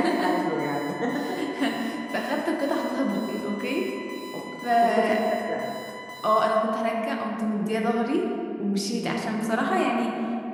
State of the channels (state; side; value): identical; both; correlation 1.00